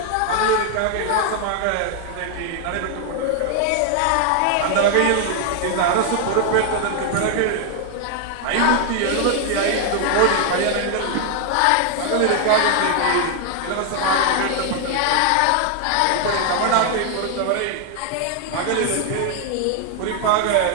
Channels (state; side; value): different; both; correlation 0.00